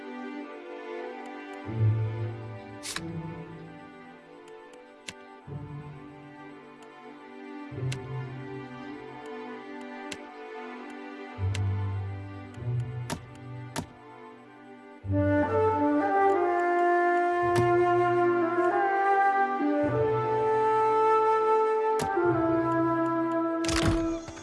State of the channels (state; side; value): identical; both; correlation 1.00